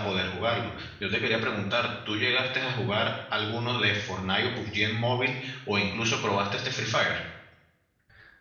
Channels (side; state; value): both; identical; correlation 1.00